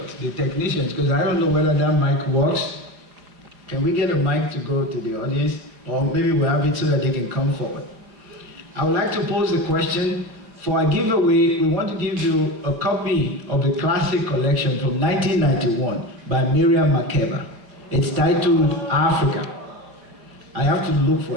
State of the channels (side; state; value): left; late; 4.7 ms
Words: the technicians, because I don't know whether that mic works. Can we get a mic to go to the audience? or maybe we have it so that they can come forward. I would like to pose the question. For our giveaway, we want to give you a copy of the classic collection from 1991 by Miriam Makeba. It's titled Africa. I have to look for